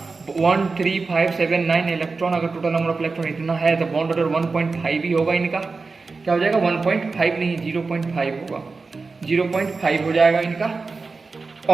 1 3 5 7 9 इलेक्ट्रॉन, अगर टोटल नंबर ऑफ इलेक्ट्रॉन इतना है तो बॉन्ड ऑर्डर 1.5 ही होगा इनका। क्या हो जाएगा, 1.5 नहीं 0.5 होगा, 0.5 हो जाएगा इनका,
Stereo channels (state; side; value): quieter; left; 4.2 dB